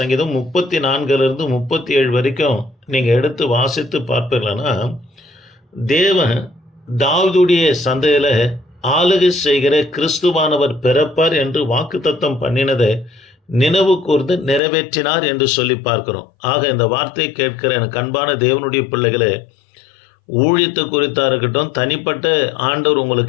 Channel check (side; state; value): right; drops out; at 14.6 s